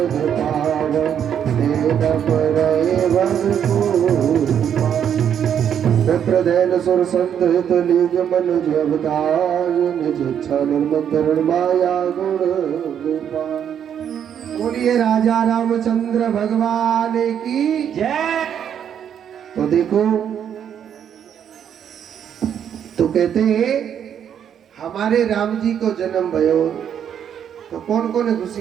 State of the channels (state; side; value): quieter; left; 8.8 dB